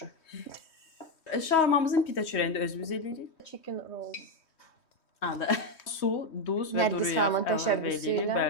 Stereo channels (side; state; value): right; late; 3.1 ms